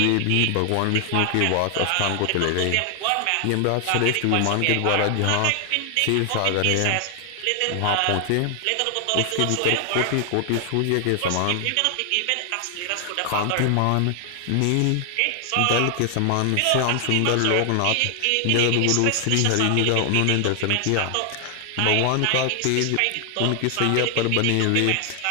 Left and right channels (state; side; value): different; both; correlation 0.00